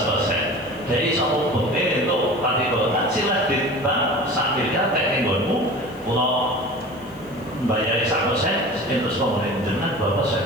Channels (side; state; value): left; noise; hiss, 27 dB below the sound